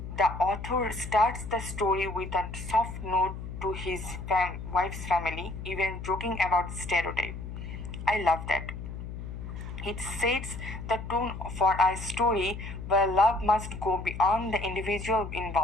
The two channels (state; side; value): noise; left; hum, 8 dB below the sound